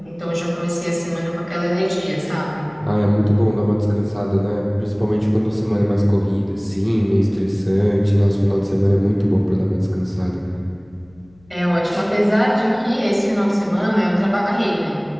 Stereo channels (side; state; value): left; noise; hum, 29 dB below the sound